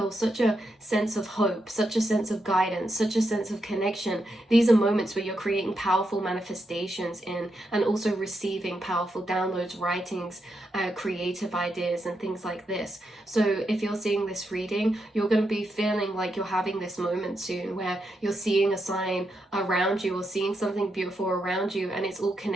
such a sense of hope, such a sense of guidance, such a sense of connection, these are moments where you're creating powerful manifestations in, and also receiving powerful downloads, writings, creative ideas, and things like this. So if you're seeing this reading, you're going to be feeling like you're having this moment soon where you're seeing a sign around you, or seeing something beautiful around you, and it's all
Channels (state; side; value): normal; both; correlation 0.83